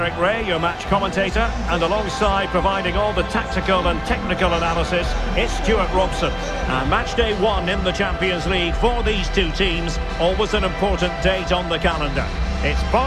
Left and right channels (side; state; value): both; identical; correlation 1.00